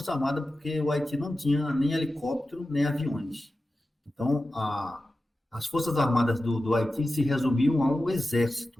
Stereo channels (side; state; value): both; normal; correlation 0.93